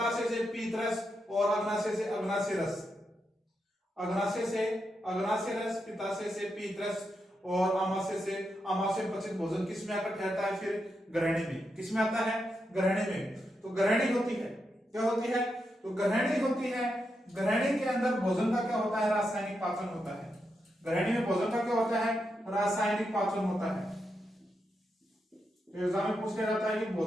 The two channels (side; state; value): both; normal; correlation 0.85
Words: से पीत रस और अग्नाशय से अग्नाशय रस, अग्नाशय से अग्नाशय रस, पिताशय से पीत रस और आमाशय से आमाशय पचित भोजन किस में आकर ठहरता है, फिर ग्रहणी में, किस में आता है ग्रहणी में। तो ग्रहणी होती है, क्या होती है, तो ग्रहणी होती है। ग्रहणी के अंदर भोजन का क्या होता है, रासायनिक पाचन होता है। ग्रहणी में भोजन का क्या होता है, रासायनिक पाचन होता है। तो एग्जाम में पूछ लिया जाता है कि